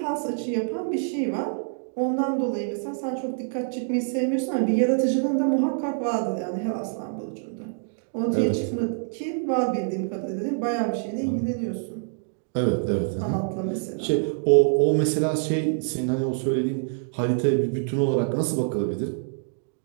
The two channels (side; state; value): left; silent; digital silence